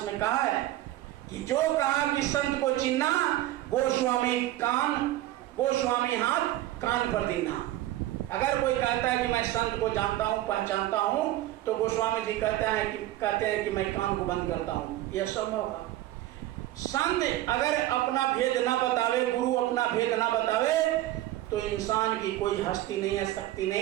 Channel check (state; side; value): quieter; left; 15.1 dB